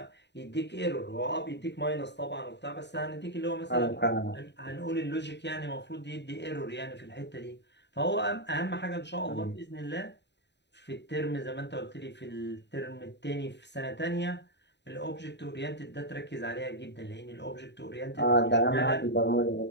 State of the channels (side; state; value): right; late; 0.50 ms